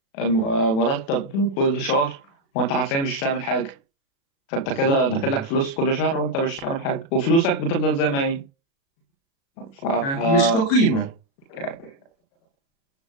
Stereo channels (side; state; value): right; late; 36 ms